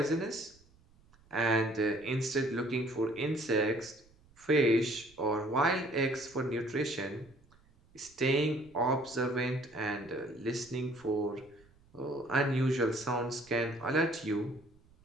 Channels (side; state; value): right; noise; rumble, 29 dB below the sound